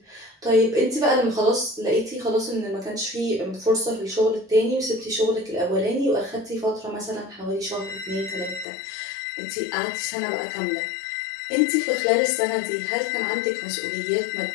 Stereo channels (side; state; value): right; drops out; at 8.7 s